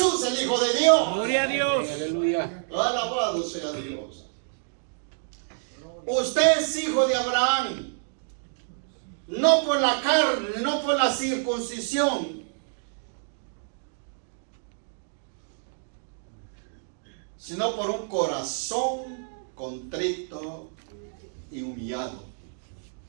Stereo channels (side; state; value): left; silent; digital silence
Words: el Hijo de Dios. Gloria a Dios. Aleluya. Alabado sea Dios. Usted es hijo de Abraham. no por la carne, no por la circuncisión, sino por un corazón contrito y humillado.